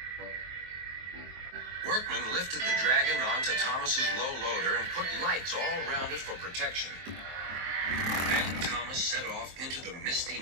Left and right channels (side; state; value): left; late; 23 ms